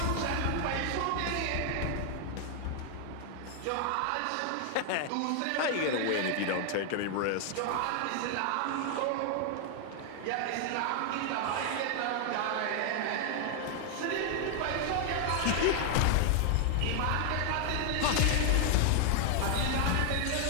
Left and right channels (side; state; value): both; different; correlation 0.00